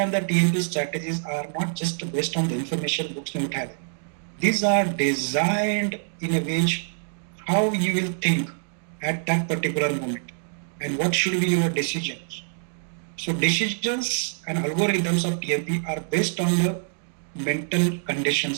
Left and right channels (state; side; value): silent; left; digital silence